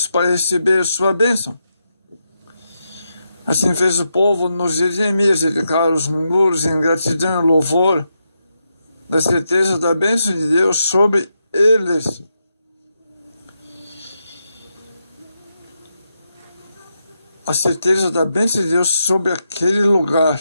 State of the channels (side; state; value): both; inverted; correlation -0.84